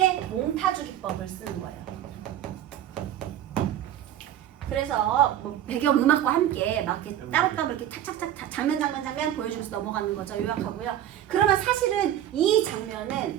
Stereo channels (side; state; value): left; quieter; 11.5 dB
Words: 몽타주 기법을 쓰는 거예요. 그래서 뭐 배경 음악과 함께 막 이렇게 따로따로 이렇게 탁탁탁 장면 보여주면서 넘어가는 거죠. 요약하고요. 그러면 사실은 이